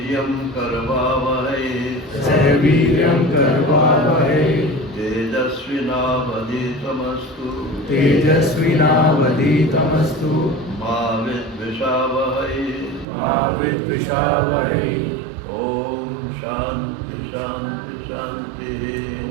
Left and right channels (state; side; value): drops out; left; at 13.1 s